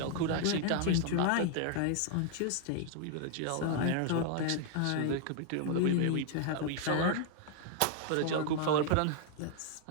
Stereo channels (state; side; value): different; both; correlation 0.00